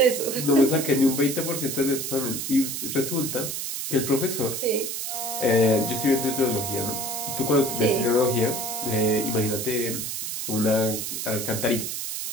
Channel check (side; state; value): right; noise; hiss, 4 dB below the sound